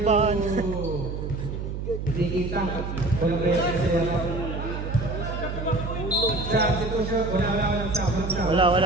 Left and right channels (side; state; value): right; noise; hum, 5 dB below the sound